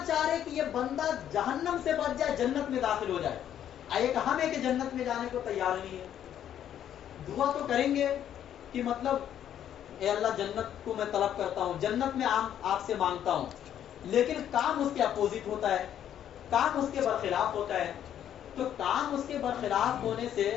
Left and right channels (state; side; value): quieter; right; 10.3 dB